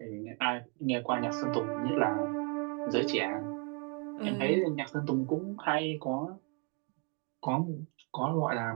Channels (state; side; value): quieter; left; 34.1 dB